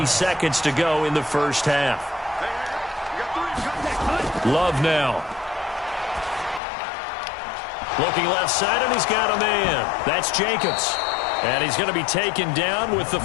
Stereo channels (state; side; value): drops out; right; at 6.6 s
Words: seconds to go in the first half. Love now. Looking left side, and he's got a man. That's Jacobs. And he's going to be taken down with the